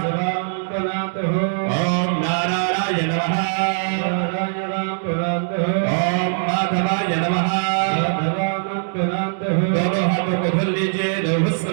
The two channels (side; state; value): left; silent; digital silence